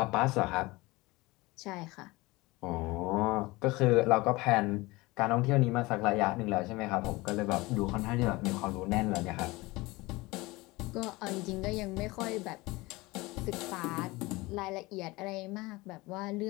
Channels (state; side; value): quieter; right; 21.9 dB